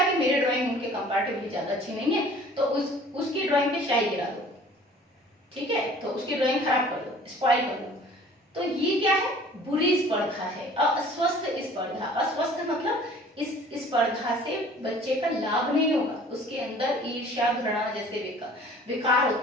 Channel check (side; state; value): both; normal; correlation 0.50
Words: कि मेरी ड्राइंग उनके कंपैरेटिवली ज्यादा अच्छी नहीं है, तो उसकी ड्राइंग पे शाई गिरा दो, ठीक है, तो उसकी ड्राइंग खराब कर दो, स्पॉइल कर दो। तो ये क्या है, बुरी स्पर्धा है, अस्वस्थ स्पर्धा। अस्वस्थ मतलब इस स्पर्धा से बच्चे का लाभ नहीं होगा, उसके अंदर ईर्ष्या, घृणा जैसे विकार